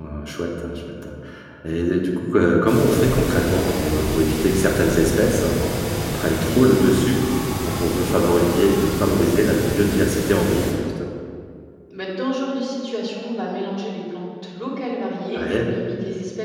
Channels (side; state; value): both; identical; correlation 1.00